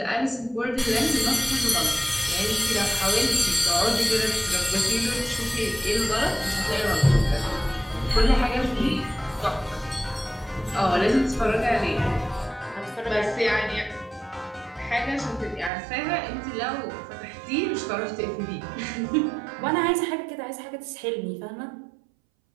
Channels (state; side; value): drops out; left; at 15.7 s